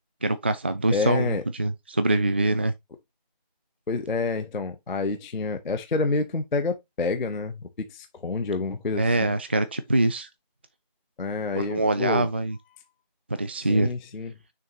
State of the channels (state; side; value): inverted; both; correlation -0.55